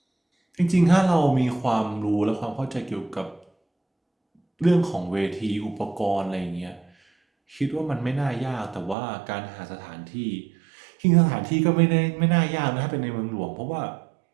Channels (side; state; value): left; drops out; at 9.0 s